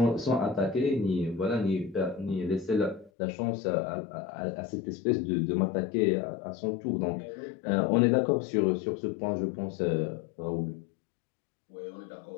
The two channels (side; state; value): right; drops out; at 3.1 s